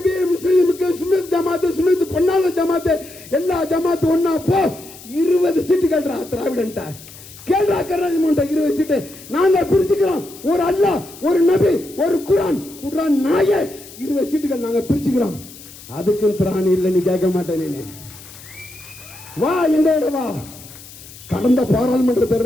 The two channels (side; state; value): left; noise; hiss, 18 dB below the sound